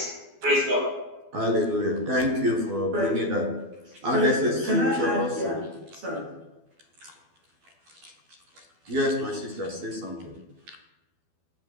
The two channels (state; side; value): late; left; 12 ms